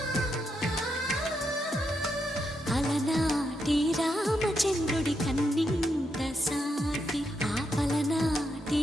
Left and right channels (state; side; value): normal; both; correlation 0.82